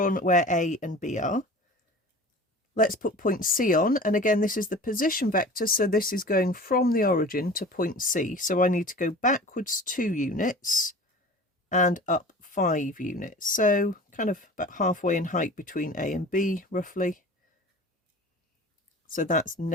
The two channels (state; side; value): normal; both; correlation 0.40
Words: where A and B are. Let's put point C on, and again this is the position vector, so this is going from the origin to point C, so I need to go backwards 2 units and up 5 units, so kind of about halfway in height between A and B roughly. So that's